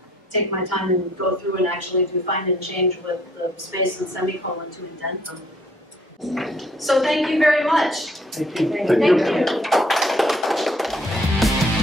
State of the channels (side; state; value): both; normal; correlation 0.63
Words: take my time and go through and actually do find and change with the space and semicolon to indent them. So thank you very much. Thank you. Thank you.